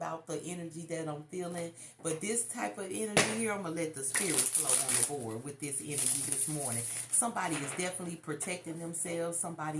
the energy that I'm feeling, but this type of energy here, I'm going to let the spirit flow on the board with this energy this morning. Somebody is definitely protecting themselves.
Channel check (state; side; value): identical; both; correlation 1.00